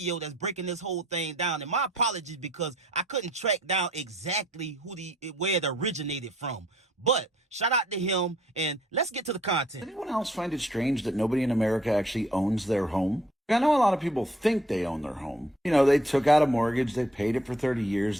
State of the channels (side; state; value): both; normal; correlation 0.63